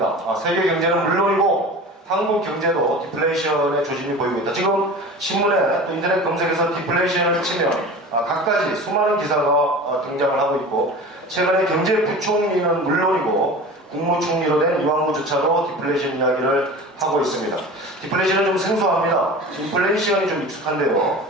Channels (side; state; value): both; normal; correlation 0.36